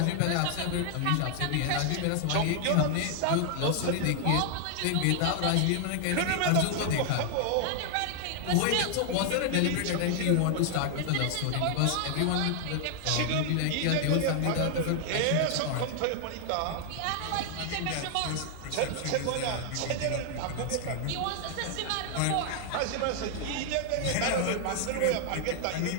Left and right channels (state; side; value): different; both; correlation 0.00